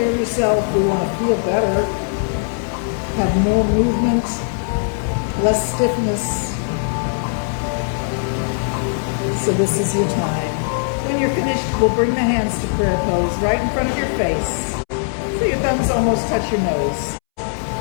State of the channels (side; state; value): right; silent; 66 dB below the other